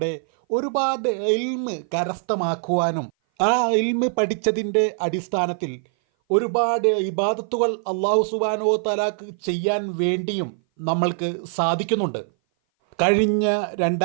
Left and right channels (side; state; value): left; silent; 58 dB below the other